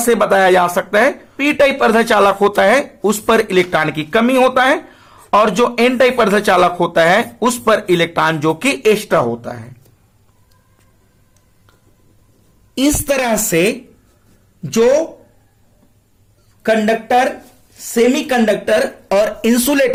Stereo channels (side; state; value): both; identical; correlation 1.00